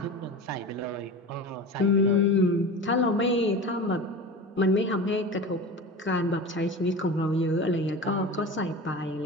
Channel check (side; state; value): both; normal; correlation 0.31